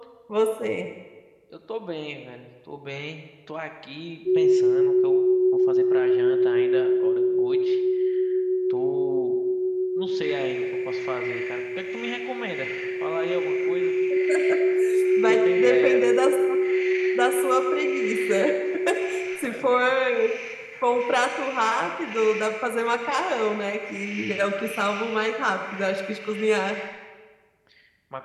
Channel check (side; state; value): both; identical; correlation 1.00